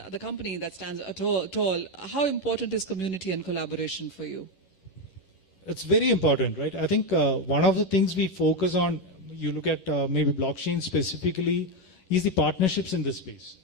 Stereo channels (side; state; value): right; late; 11 ms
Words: the company that stands tall, how important is community and collaboration for you? It's very important, right? I think one of the things we focus on, you look at maybe blockchain specifically, is the partnerships in this space,